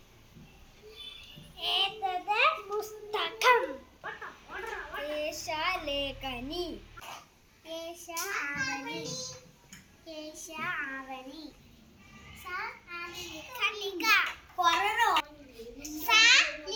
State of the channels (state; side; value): identical; both; correlation 1.00